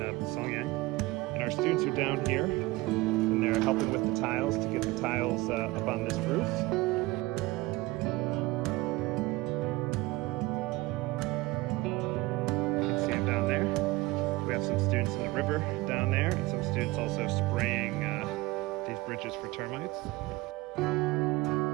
Songyang, and our students are down here, and they're helping with the tiles to get the tiles up on this roof. Down there. We have some students in the river down there, and some students also spraying these bridges for termites.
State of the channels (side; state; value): left; quieter; 20.9 dB